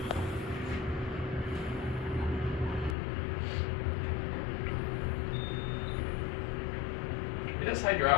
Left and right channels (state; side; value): drops out; right; at 3.0 s